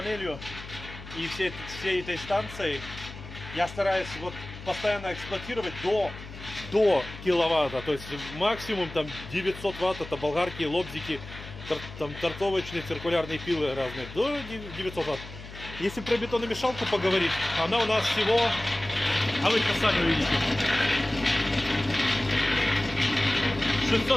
и всей этой станцией я стараюсь вот постоянно эксплуатировать до киловатта. То есть максимум там 900 ватт, это болгарки, лобзики, там торцовочные, циркулярные пилы разные. До 900 ватт. Если про бетономешалку поговорить, она у нас всего, а вы это сами увидите,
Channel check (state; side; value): noise; left; hum, 14 dB below the sound